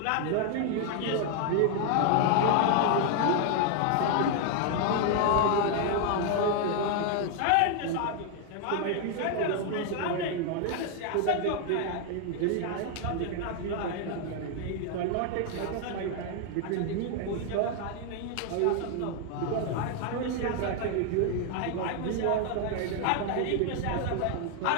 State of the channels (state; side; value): different; both; correlation 0.00